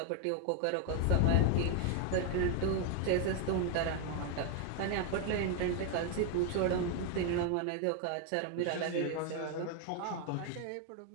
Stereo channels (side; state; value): both; different; correlation 0.01